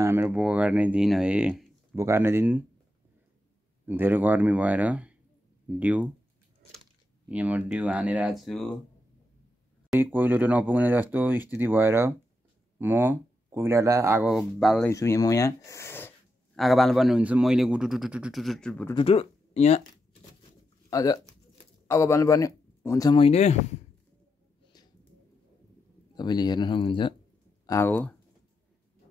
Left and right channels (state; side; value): normal; both; correlation 0.85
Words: बोका काट्ने दिन है। बोका काट्ने दिन धेरै गर्मी भएर डिउ यहाँ म डिउ हानिरहेको छु। कोइलो नपुग्ने जस्तो स्थिति भएर म कोइलालाई आगो बाल्दैछु। म यहाँ आगो बाल्नुपर्ने हुन्छ। मैले गुटुटुटुटुटुटुटुटुटु यहाँ आज आगो बाल्नुपर्ने हुन्छ। मैले तपाईँले हेर्न सक्नुहुन्छ आगो